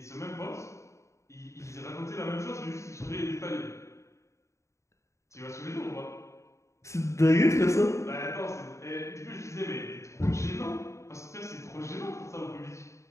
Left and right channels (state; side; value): late; right; 0.14 ms